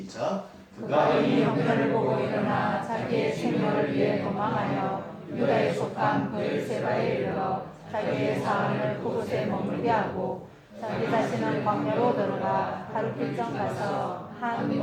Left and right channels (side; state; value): both; identical; correlation 1.00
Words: 그가 이 형편을 보고 일어나 자기의 생명을 위해 도망하여 유다에 속한 브엘세바에 이르러 자기의 사안을 그곳에 머물게 하고 자기 자신은 광야로 들어가 하루 필정 가서 한